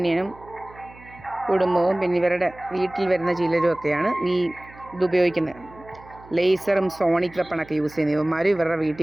കുടുംബവും, പിന്നെ ഇവരുടെ വീട്ടിൽ വരുന്ന ചിലരുമൊക്കെയാണ് ഇതുപയോഗിക്കുന്നത്. ലേസറും സോണിക് വെപ്പണൊക്കെ യൂസ് ചെയ്യുന്ന ഇവന്മാരും ഇവരുടെ വീട്ടിൽ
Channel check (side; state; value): right; noise; hum, 22 dB below the sound